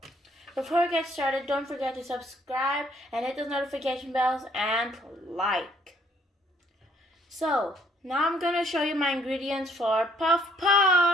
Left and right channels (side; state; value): both; normal; correlation 0.64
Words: Before we get started, don't forget to subscribe and hit those notification bells and like. So, now I'm going to show you my ingredients for puff